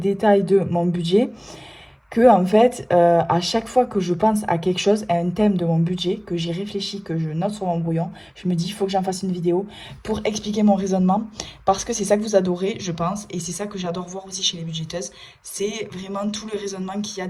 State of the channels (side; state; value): both; identical; correlation 1.00